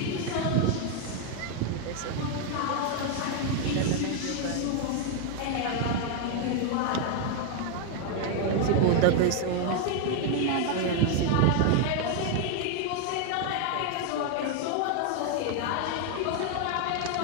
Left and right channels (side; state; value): both; different; correlation 0.01